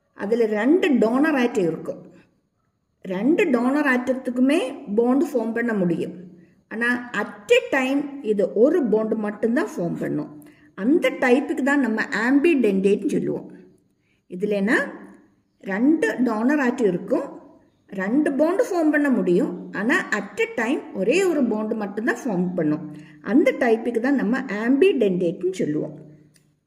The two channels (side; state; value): both; identical; correlation 1.00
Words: அதில் 2 டோனர் ஆட்டம் இருக்கும். 2 டோனர் ஆட்டத்துக்குமே பாண்டு ஃபார்ம் பண்ண முடியும். ஆனால் அட் எ டைம் இது ஒரு பாண்டு மட்டும்தான் ஃபார்ம் பண்ணும். அந்த டைப்புக்கு தான் நம்ம ஆம்பிடென்டேட்னு சொல்லுவோம். இதுலனா 2 டோனர் ஆட்டம் இருக்கும், 2 பாண்டு ஃபார்ம் பண்ண முடியும். ஆனால் அட் எ டைம் ஒரே ஒரு பாண்டு மட்டும்தான் ஃபார்ம் பண்ணும். அந்த டைப்புக்கு தான் நம்ம ஆம்பிடென்டேட்னு சொல்லுவோம்.